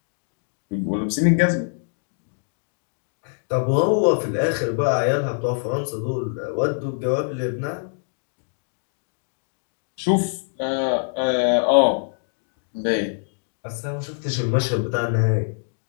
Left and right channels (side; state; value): right; silent; digital silence